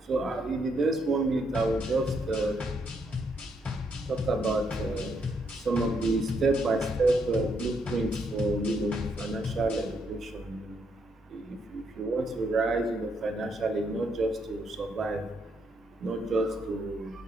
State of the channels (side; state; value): both; normal; correlation 0.75